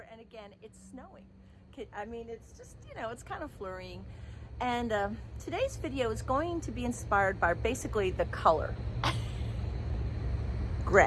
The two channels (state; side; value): identical; both; correlation 1.00